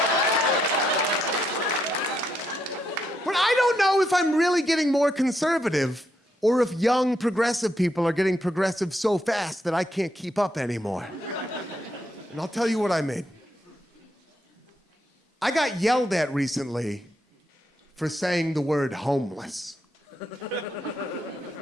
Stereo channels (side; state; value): both; normal; correlation 0.79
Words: I don't know if I'm really getting more conservative or if young progressive people are getting progressive so fast that I can't keep up anymore. And I'll tell you what I mean. I got yelled at recently for saying the word homeless.